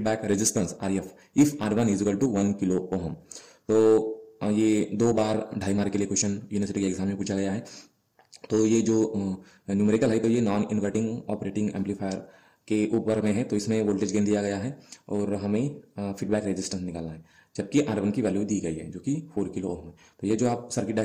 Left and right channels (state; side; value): identical; both; correlation 1.00